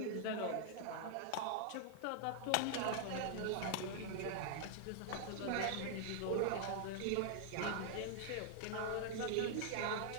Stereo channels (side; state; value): both; different; correlation 0.00